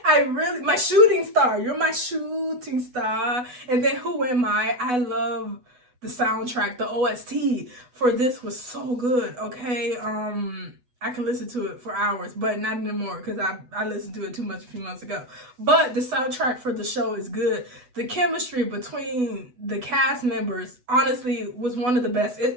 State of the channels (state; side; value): late; left; 8.1 ms